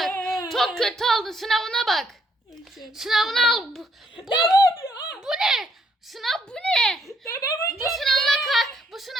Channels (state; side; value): normal; both; correlation 0.71